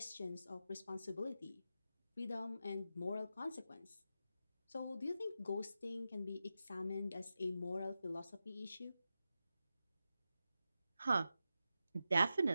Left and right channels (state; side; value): inverted; both; correlation -0.91